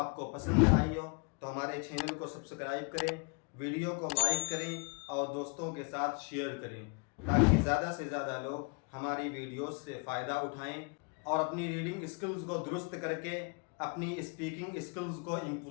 کو پسند آئی ہو تو ہمارے چینل کو سبسکرائب کریں، ویڈیو کو لائک کریں اور دوستوں کے ساتھ شیئر کریں تاکہ زیادہ سے زیادہ لوگ ہماری ویڈیوز سے فائدہ اٹھائیں اور اپنی ریڈنگ اسکلز کو درست کر کے اپنی اسپیکنگ اسکلز کو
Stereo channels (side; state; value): right; quieter; 35.3 dB